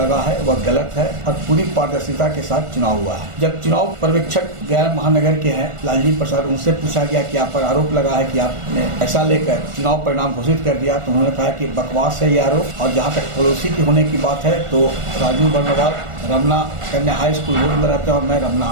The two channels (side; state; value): left; late; 1.4 ms